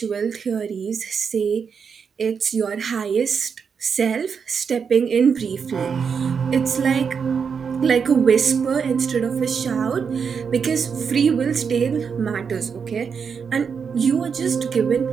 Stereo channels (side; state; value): left; quieter; 6.3 dB